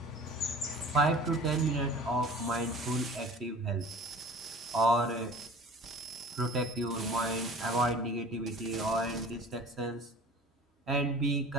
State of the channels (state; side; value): normal; both; correlation 0.43